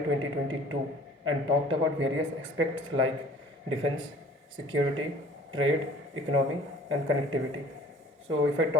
and talked about various aspects like defense, security, trade, economy, and connectivity. So, if I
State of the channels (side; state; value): both; normal; correlation 0.49